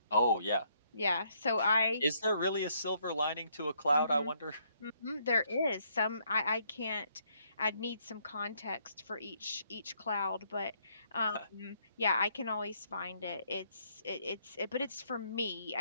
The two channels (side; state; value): both; inverted; correlation -0.70